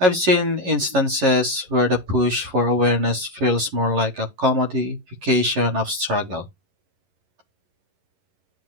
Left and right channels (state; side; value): late; left; 11 ms